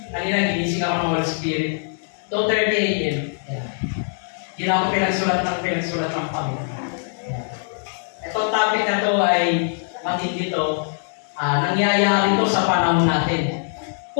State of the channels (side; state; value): right; silent; digital silence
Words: Kanina, ginising ako ng Holy Spirit. 2:30 a.m. Yeah. Hindi na ako pinagsulat ng Panginoon. Itong topic na to ay matindi to. Nangyayari to sa panahon natin.